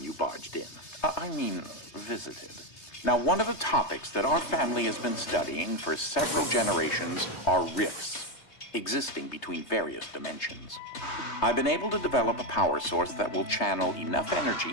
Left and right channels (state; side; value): late; right; 3.3 ms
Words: you barged in. I mean, visited. Now, one of the topics that our family has been studying for several generations are rifts existing between various dimensions. I've been able to develop a power source that will channel enough